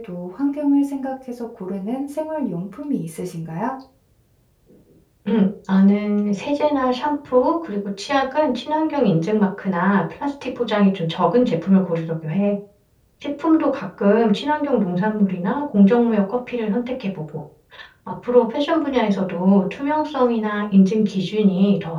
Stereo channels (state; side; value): identical; both; correlation 1.00